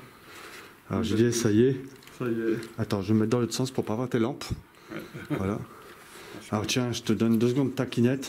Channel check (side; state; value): both; identical; correlation 1.00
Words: Alors JD, ça y est. Ça y est. Attends, je vais me mettre dans l'autre sens pour pas voir tes lampes. Ouais. Voilà. Alors tiens, je te donne 2 secondes de ta